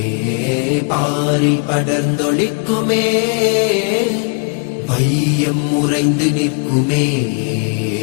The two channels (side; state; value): right; quieter; 37.1 dB